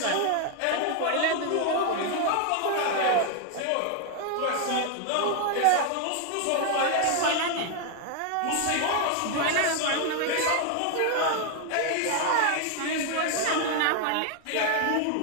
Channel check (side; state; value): both; different; correlation 0.00